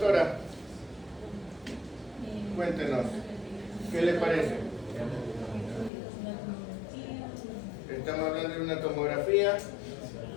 cuéntenos, ¿qué le parece? Estamos hablando de una tomografía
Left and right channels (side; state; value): right; drops out; at 5.9 s